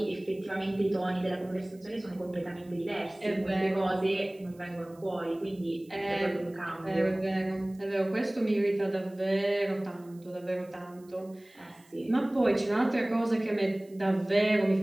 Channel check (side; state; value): right; noise; hiss, 29 dB below the sound